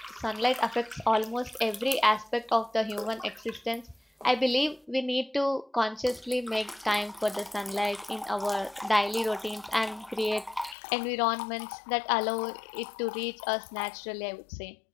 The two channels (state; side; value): drops out; right; at 10.8 s